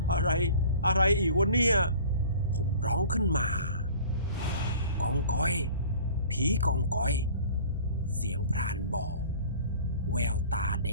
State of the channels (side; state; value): both; inverted; correlation -0.46